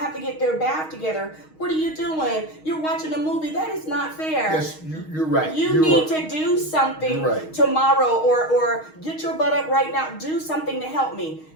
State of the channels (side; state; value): right; late; 6.4 ms